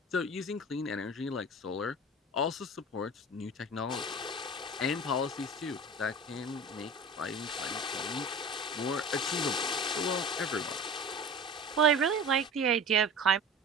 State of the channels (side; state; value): both; normal; correlation 0.37